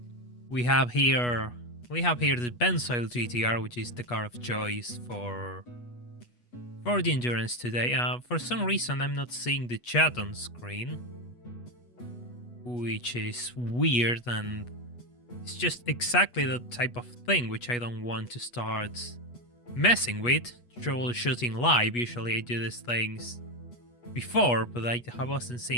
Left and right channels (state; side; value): late; right; 8.2 ms